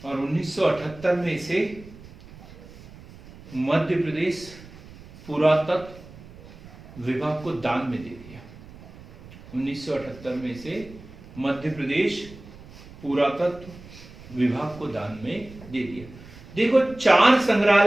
और 1978 में इसे मध्य प्रदेश पुरातत्व विभाग को दान में दे दिया। 1978 में इसे मध्य प्रदेश पुरातत्व विभाग को दान में दे दिया। देखो 4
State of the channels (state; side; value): noise; right; rumble, 19 dB below the sound